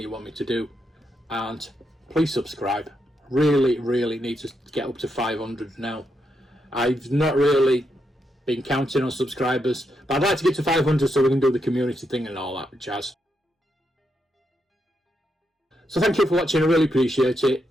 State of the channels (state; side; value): normal; both; correlation 0.82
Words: want me to do, and please subscribe. Really need to get up to 500 now. I've not really been counting on subscribers, but I'd like to get to 500 so we can do the community thing and all that jazz. So thank you for watching. I really appreciate it,